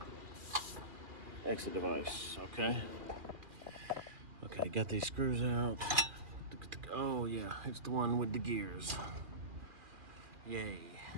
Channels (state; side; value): late; left; 2.4 ms